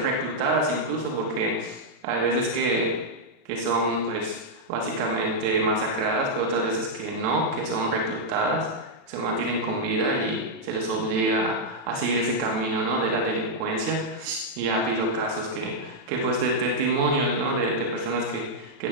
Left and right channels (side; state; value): left; late; 36 ms